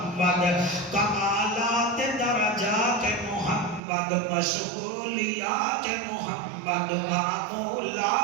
کمالات درجات محمد مشغولیات محمد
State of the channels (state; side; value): drops out; left; at 3.8 s